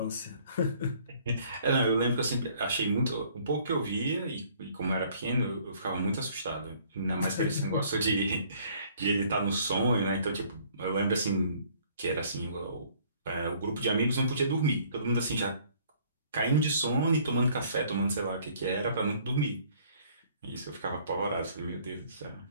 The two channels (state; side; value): inverted; both; correlation -0.59